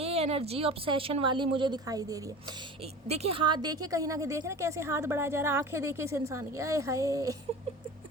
एनर्जी ऑब्सेशन वाली मुझे दिखाई दे रही है। देखिए हाथ देखिए, कहीं ना कहीं देख रहे हैं कैसे हाथ बढ़ाया जा रहा है, आंखें देखिए इस इंसान की, आए हाय।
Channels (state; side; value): normal; both; correlation 0.35